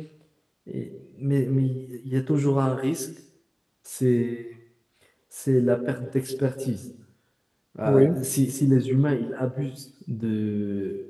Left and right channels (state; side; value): identical; both; correlation 1.00